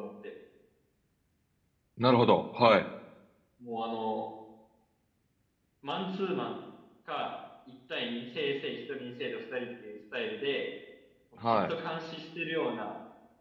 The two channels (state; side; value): identical; both; correlation 1.00